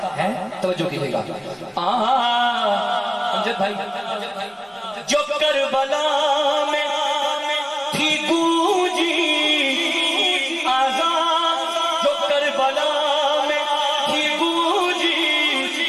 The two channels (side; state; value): both; identical; correlation 1.00